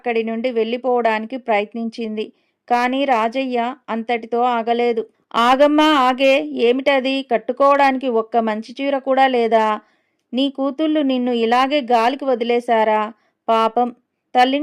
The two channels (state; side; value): identical; both; correlation 1.00